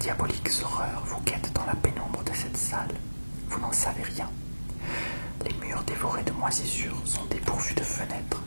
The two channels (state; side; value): inverted; both; correlation -1.00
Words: horreur vous guette dans la pénombre de cette salle? Vous n'en savez rien. Les murs dévorés de moisissures sont dépourvus de fenêtres,